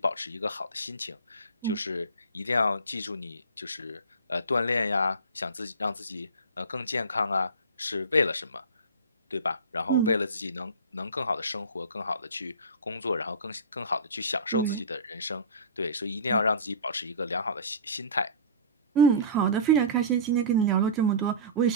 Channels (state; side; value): inverted; both; correlation -0.33